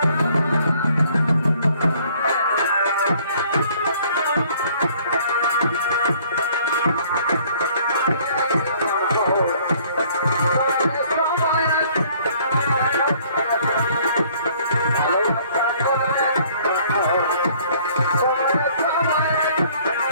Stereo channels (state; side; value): inverted; both; correlation -0.58